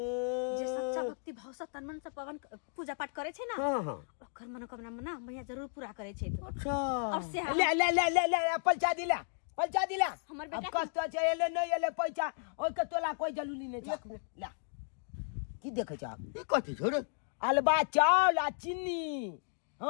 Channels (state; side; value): silent; right; digital silence